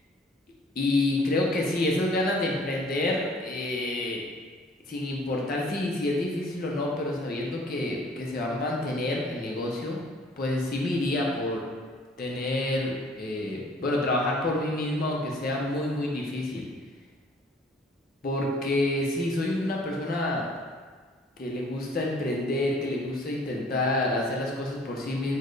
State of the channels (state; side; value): normal; both; correlation 0.55